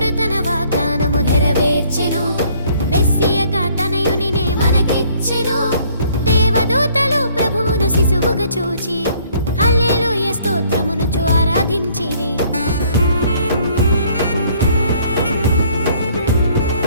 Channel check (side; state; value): both; inverted; correlation -0.61